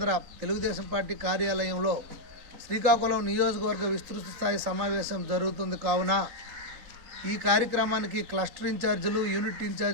తెలుగుదేశం పార్టీ కార్యాలయంలో శ్రీకాకుళం నియోజకవర్గ విస్తృత స్థాయి సమావేశం జరుగుతుంది. కావున ఈ కార్యక్రమానికి క్లస్టర్ ఇన్ఛార్జీలు, యూనిట్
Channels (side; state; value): left; late; 3.8 ms